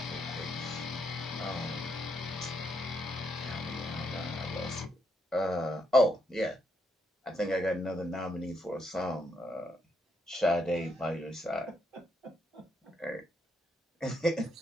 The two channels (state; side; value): normal; both; correlation 0.77